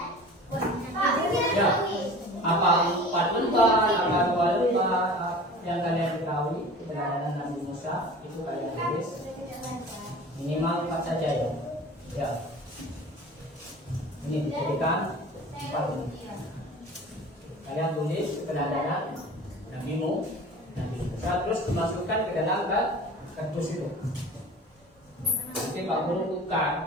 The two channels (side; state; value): both; normal; correlation 0.40